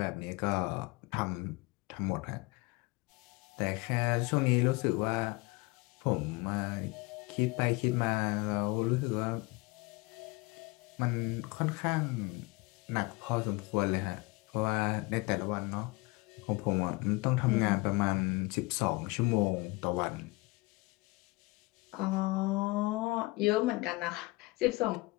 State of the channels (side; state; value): right; quieter; 24.1 dB